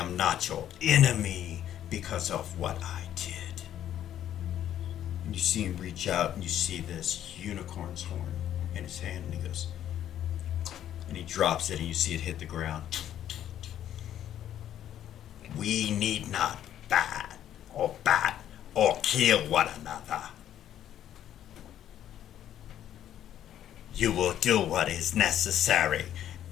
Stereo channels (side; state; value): right; quieter; 11.0 dB